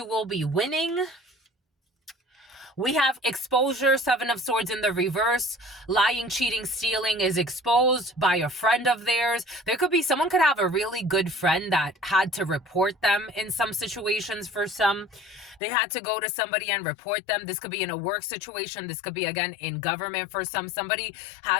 will be winning. We have exposure, 7 of Swords in the reverse. Lying, cheating, stealing is exposed by a friend of theirs. There could be, someone could have a really good friend that had to report them in some situations for some. They had to go to somebody and report them. This could be in a work situation. This could be, again, in government for some. Somebody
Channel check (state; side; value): drops out; right; at 15.6 s